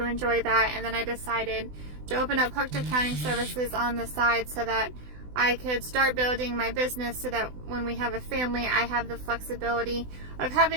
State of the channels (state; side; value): late; left; 20 ms